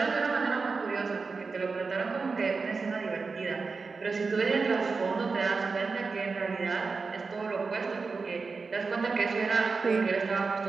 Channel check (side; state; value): left; quieter; 4.5 dB